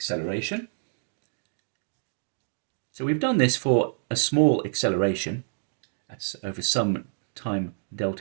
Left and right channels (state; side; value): silent; left; 60 dB below the other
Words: So we've done this for a small acceleration, that's over some time